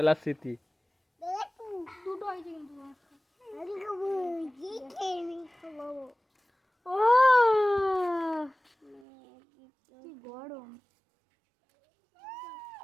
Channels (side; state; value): left; drops out; at 9.0 s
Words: স্মৃতি দুটো হয়েছে কিন্তু ও কি গরম